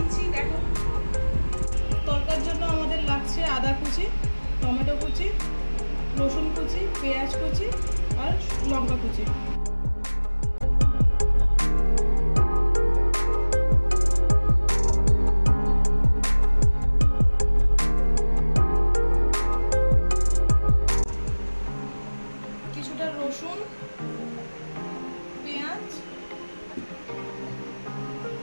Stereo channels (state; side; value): inverted; both; correlation -1.00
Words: দেখো। তরকার জন্য আমাদের লাগছে আদা কুচি, টমেটো কুচি, রসুন কুচি, পেঁয়াজ কুচি আর লঙ্কা কুচি। কিছুটা রসুন, পেঁয়াজ,